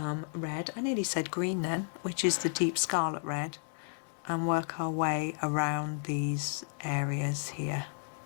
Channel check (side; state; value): right; silent; 56 dB below the other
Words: red, I nearly said green then, which is the Deep Scarlet Red, and work our way around these areas here.